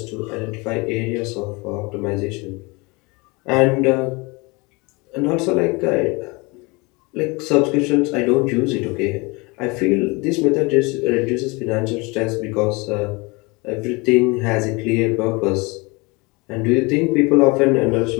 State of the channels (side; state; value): right; quieter; 26.6 dB